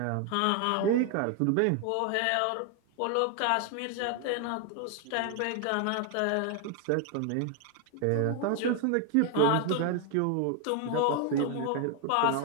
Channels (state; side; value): different; both; correlation 0.01